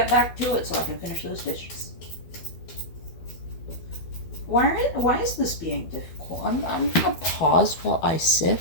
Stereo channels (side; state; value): right; late; 12 ms